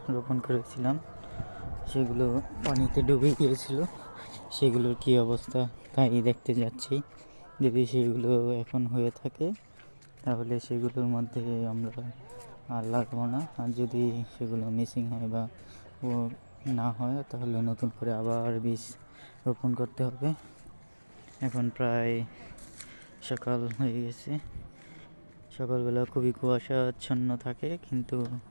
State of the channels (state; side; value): inverted; both; correlation -1.00